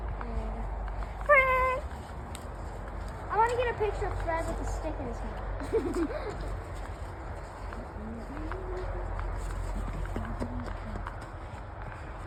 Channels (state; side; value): identical; both; correlation 1.00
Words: Fred! I want to get a picture of Fred with a stick in his hand.